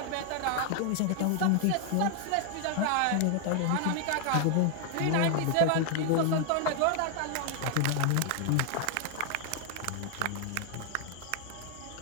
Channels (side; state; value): both; different; correlation 0.00